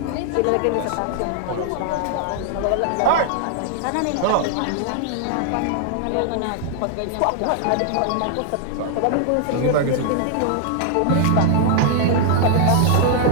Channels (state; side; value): different; both; correlation 0.00